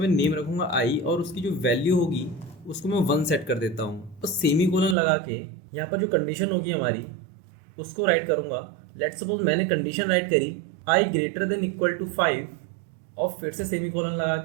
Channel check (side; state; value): left; drops out; at 5.0 s